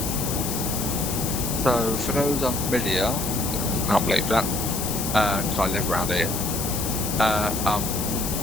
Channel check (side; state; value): left; noise; hiss, 4 dB below the sound